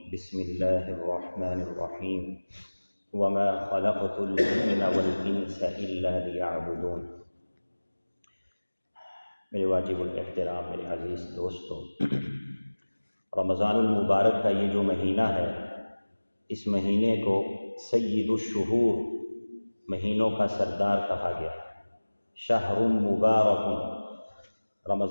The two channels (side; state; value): both; inverted; correlation -1.00